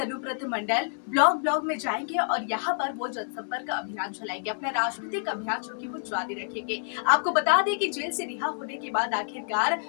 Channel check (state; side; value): silent; right; 59 dB below the other